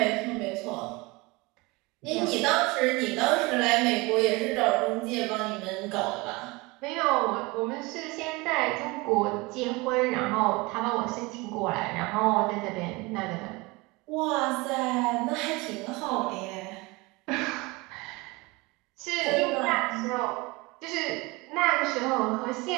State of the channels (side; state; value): left; quieter; 24.4 dB